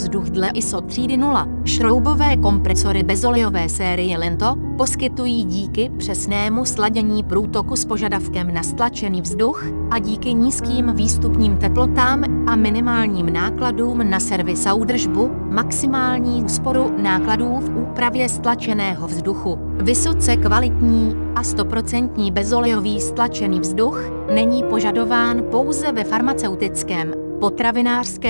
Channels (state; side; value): inverted; both; correlation -1.00